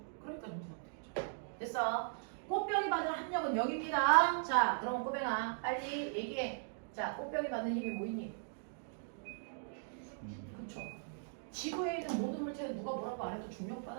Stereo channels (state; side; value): silent; left; digital silence